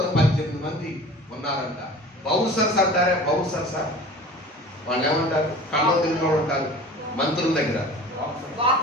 మంది ఉన్నారంట. బౌన్సర్స్ అంటారే, బౌన్సర్స్ వాళ్ళు ఏమంటారు? కళ్ళ తిరిగి ఉంటారు మంత్రుల దగ్గర.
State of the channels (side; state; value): both; normal; correlation 0.41